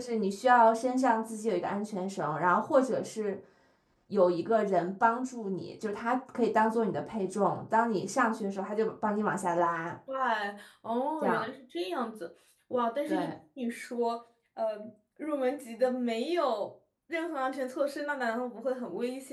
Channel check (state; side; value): identical; both; correlation 1.00